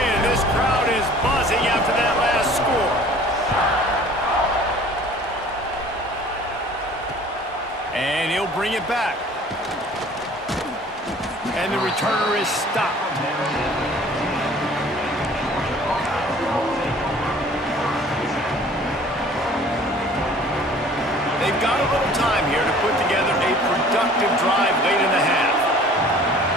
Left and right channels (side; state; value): both; normal; correlation 0.50